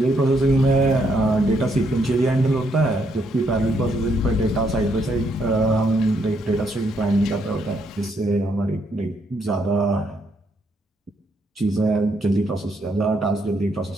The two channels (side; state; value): both; normal; correlation 0.74